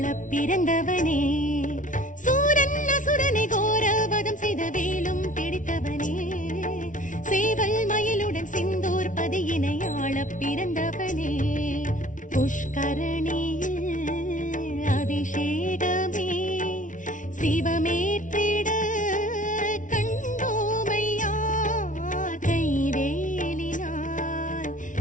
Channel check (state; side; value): late; right; 0.37 ms